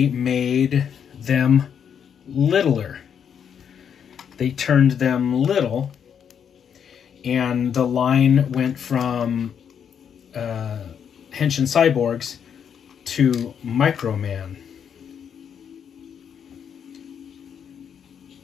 made them littler. They turned them little, and the line went from Henshin cyborgs to Microman.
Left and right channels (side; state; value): right; quieter; 7.9 dB